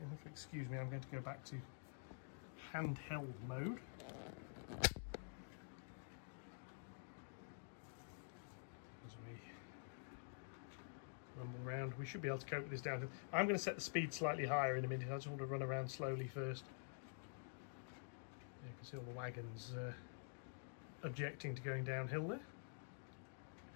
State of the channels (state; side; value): silent; right; digital silence